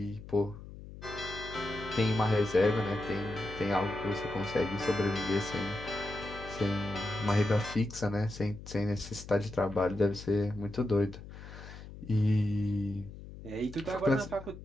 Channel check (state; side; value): noise; left; hum, 14 dB below the sound